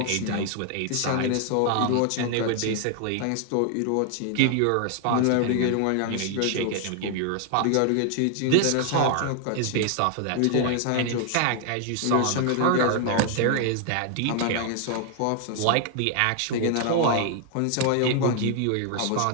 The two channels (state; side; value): different; both; correlation 0.00